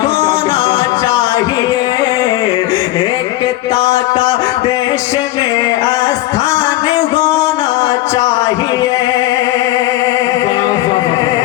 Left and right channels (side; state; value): right; quieter; 16.3 dB